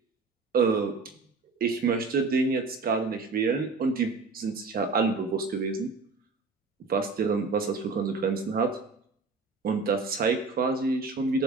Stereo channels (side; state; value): left; quieter; 4.1 dB